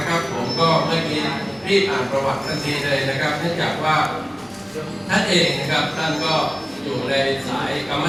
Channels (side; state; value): both; identical; correlation 1.00